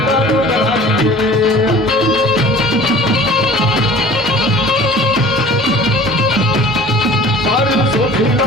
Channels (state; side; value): normal; both; correlation 0.45